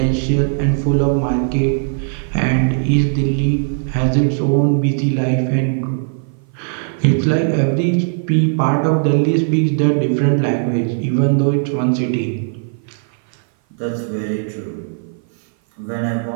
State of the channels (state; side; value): silent; left; 56 dB below the other